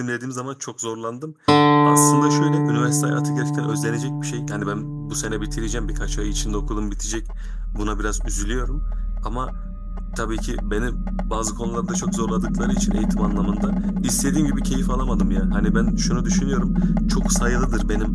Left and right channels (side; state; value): both; identical; correlation 1.00